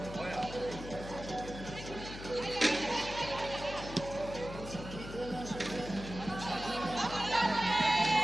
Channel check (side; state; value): left; noise; hum, 11 dB below the sound